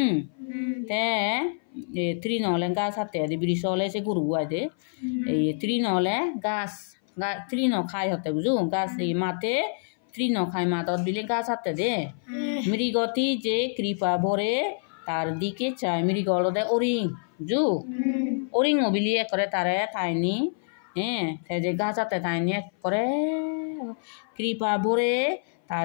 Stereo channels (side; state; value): right; silent; 57 dB below the other